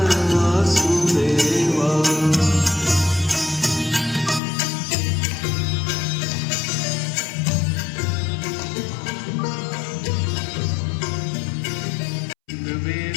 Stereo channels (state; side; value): drops out; right; at 4.4 s